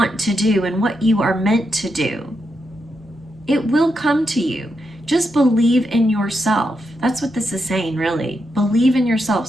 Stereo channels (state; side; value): normal; both; correlation 0.84